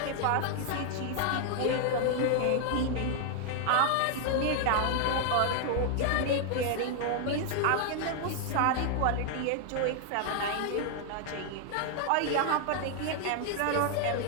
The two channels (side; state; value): both; different; correlation 0.00